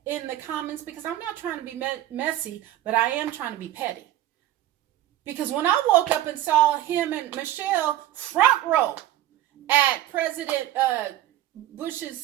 in the comments, because I'm not trying to be messy, but I am trying to be petty. Because when I woke up and saw him and Michelle front row at President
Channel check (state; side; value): quieter; left; 13.3 dB